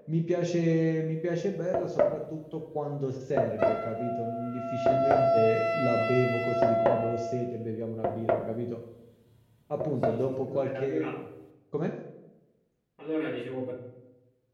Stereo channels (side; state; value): both; identical; correlation 1.00